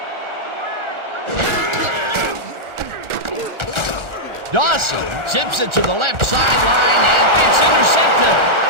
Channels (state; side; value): late; left; 1.4 ms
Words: Dawson zips it to the left sideline, and it's intercepted.